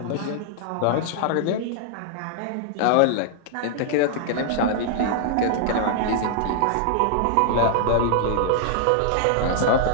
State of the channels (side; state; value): both; different; correlation -0.01